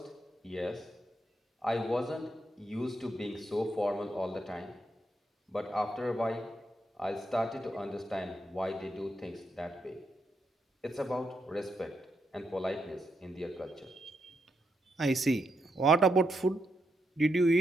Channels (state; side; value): normal; both; correlation 0.81